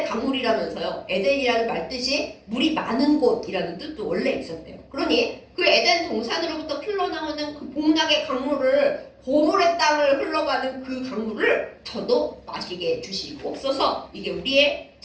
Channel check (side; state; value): both; identical; correlation 1.00